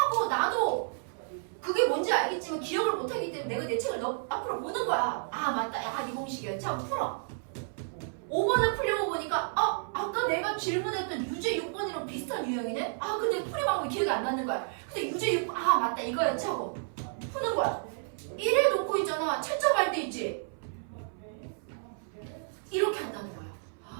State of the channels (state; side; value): silent; left; 57 dB below the other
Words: 나도 그게 뭔지 알겠지만 기억을 못하기 때문에 내가 내 책을 앞으로 보는 거야. 맞다. 야, 이 공식이었지? 하고 풀어. 5번을 풀려고 보니까 아까 내가 질문했던 유제 6번이랑 비슷한 유형이네? 근데 풀이 방법이 기억이 안 나는 거야. 근데 유제 6번 맞다 이거였지 하고 푸는 거야. 1에 놓고 있잖아. 채점할 때 있지? 이렇게 한다는 거야.